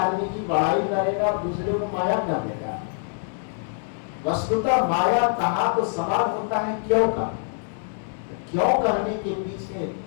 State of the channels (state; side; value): silent; right; digital silence